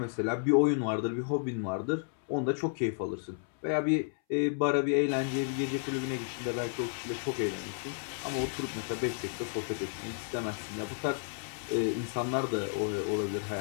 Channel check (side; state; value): right; silent; 56 dB below the other